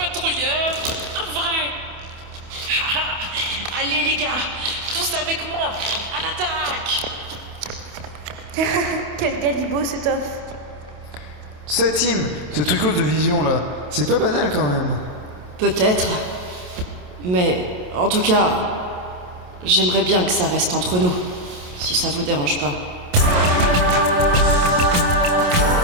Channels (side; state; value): left; late; 28 ms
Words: Un vrai? Allez les gars, tous avec moi, à l'attaque! Quel galibot cet off. C'est Tim, ce trucos de vision là, c'est pas banal quand même. Peut-être. Mais en tout cas, j'aimerais bien que ça reste entre nous, si ça vous dérange pas.